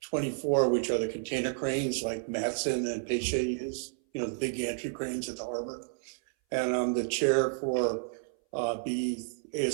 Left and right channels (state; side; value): silent; left; 57 dB below the other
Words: which are the container cranes like Matson and Peiche use, the big gantry cranes at the harbor. And I'm the chair for